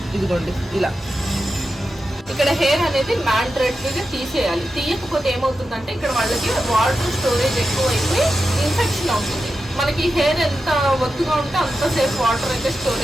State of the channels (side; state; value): both; normal; correlation 0.90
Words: ఇదిగోండి ఇలా. ఇక్కడ హెయిర్ అనేది మ్యాండరేటరీగా తీసేయాలి. తీయకపోతే ఏమవుతుందంటే ఇక్కడ వాళ్ళకి వాటర్ స్టోరేజ్ ఎక్కువ అయిపోయి ఇన్ఫెక్షన్ అవుతుంది. మనకి హెయిర్ ఎంత ఒత్తుగా ఉంటే అంతసేపు వాటర్ అయితే